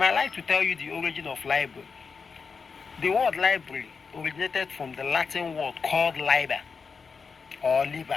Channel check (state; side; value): quieter; right; 5.3 dB